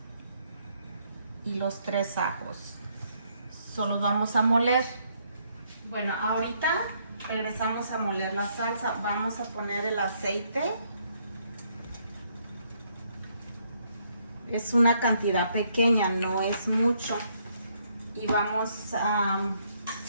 y los 3 ajos. Solo vamos a moler. Bueno, ahorita regresamos a moler la salsa. Vamos a poner el aceite. Es una cantidad pequeña, no es mucho. Y vamos a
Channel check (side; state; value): both; inverted; correlation -0.71